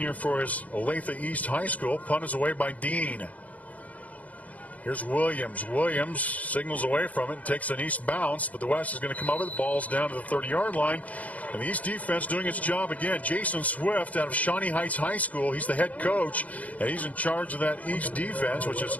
for his Olathe East High School. Punt is away by Dean. Here's Williams. Williams signals away from it and takes an East bounce, but the West is going to come over. The ball's down to the 30-yard line. And the East defense doing its job again. Jason Swift out of Shawnee Heights High School. He's the head coach, and he's in charge of that East defense, which is,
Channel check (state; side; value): late; right; 0.071 ms